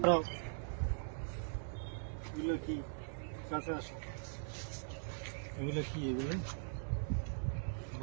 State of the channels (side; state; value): left; silent; digital silence